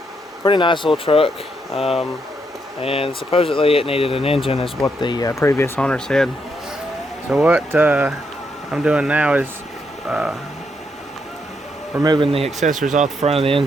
Pretty nice little truck. And supposedly it needed an engine, is what the previous owner said. So what I'm doing now is removing the accessories off the front of the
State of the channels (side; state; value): both; normal; correlation 0.78